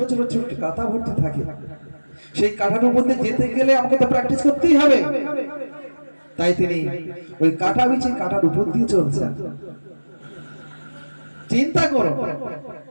ছোট ছোট কাটা ভর্তি থাকে, সেই কাটার মধ্যে যেতে গেলে আমাকে তো প্র্যাকটিস করতেই হবে। তাই তিনি ওই কাটা বিছিয়ে কাটার উপর দিয়ে চলছেন। চিন্তা করো,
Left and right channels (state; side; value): inverted; both; correlation -1.00